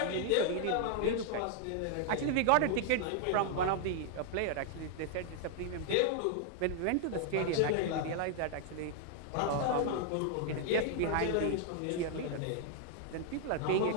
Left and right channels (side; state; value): both; different; correlation 0.00